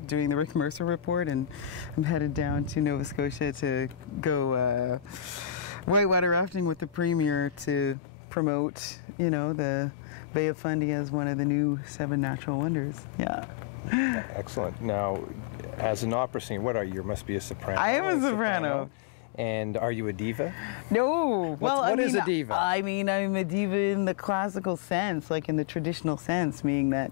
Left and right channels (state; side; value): drops out; right; at 8.0 s